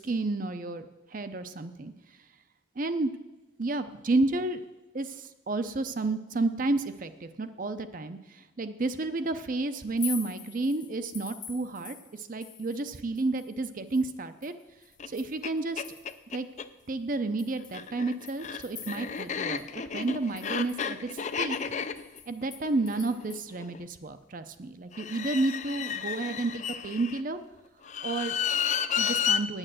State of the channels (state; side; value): normal; both; correlation 0.54